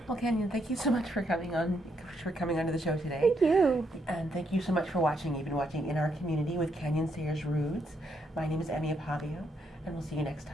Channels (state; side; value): normal; both; correlation 0.76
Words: Well, Kanyon, thank you so much for coming onto the show today. Thank you. And thank you so much for watching. You've been watching In Our Community with Kanyon Sayers-Roods. My name is Akpabio, and we'll see you next